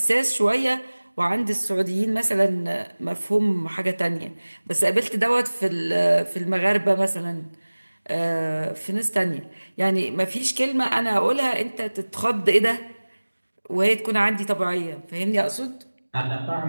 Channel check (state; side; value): inverted; both; correlation -1.00